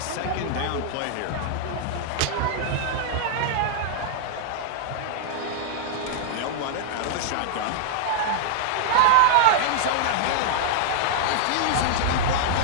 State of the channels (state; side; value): different; both; correlation -0.01